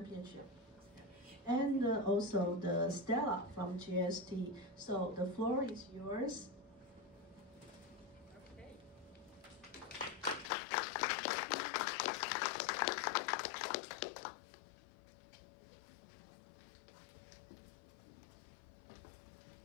And also the Stella from GST. So the floor is yours. Okay.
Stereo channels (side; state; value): right; drops out; at 10.5 s